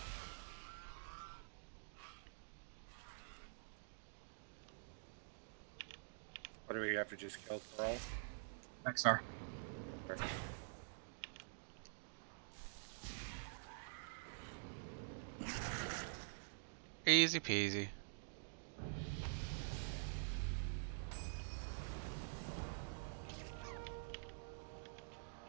What do we have to just kill Thrall? Rexar. Easy peasy.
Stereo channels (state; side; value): silent; left; digital silence